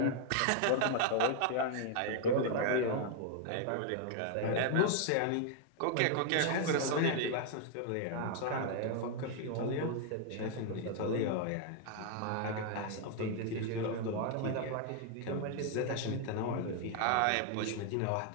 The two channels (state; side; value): different; both; correlation 0.00